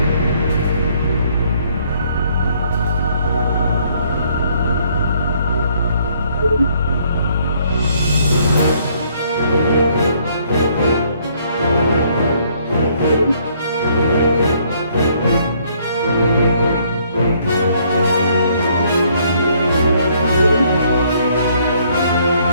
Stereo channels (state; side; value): inverted; both; correlation -0.66